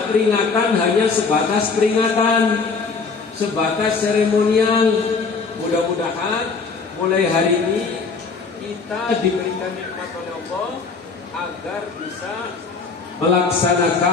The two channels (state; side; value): quieter; right; 4.7 dB